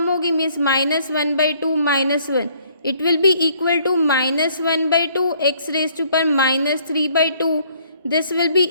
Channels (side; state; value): both; inverted; correlation -0.62